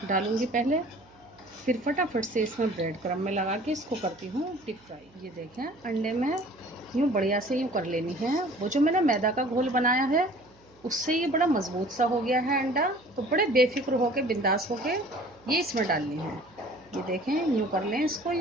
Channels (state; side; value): noise; right; hum, 29 dB below the sound